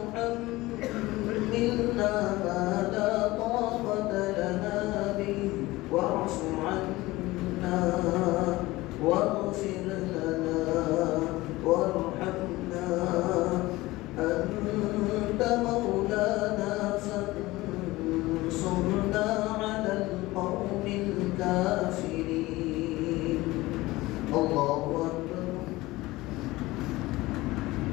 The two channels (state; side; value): quieter; right; 19.4 dB